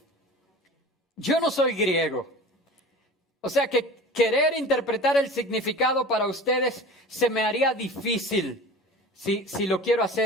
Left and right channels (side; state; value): both; normal; correlation 0.38